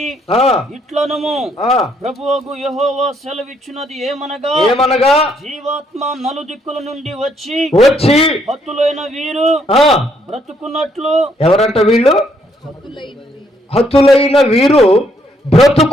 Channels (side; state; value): both; normal; correlation 0.71